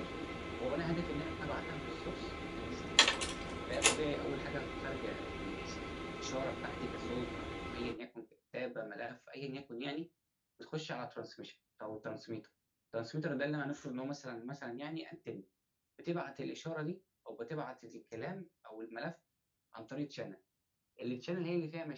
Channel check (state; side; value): identical; both; correlation 1.00